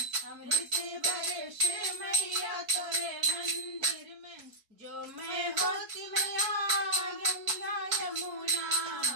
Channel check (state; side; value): late; left; 4.6 ms